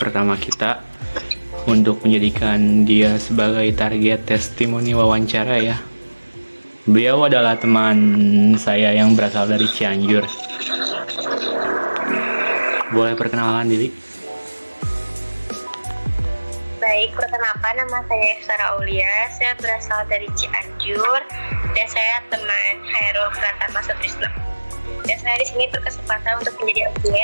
kita, untuk menjadikan dia sebagai target testimoni wawancara ya. Beliau adalah teman saya yang berasal dari Cianjur. Boleh perkenalan diri? Baik, perkenalkan nama saya Efsara Aulia, saya berasal dari Cianjur dan saya teman Hairul Pratama Sutrisno. Dan saya di sini berkesempatan untuk menjadi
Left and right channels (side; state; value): both; inverted; correlation -1.00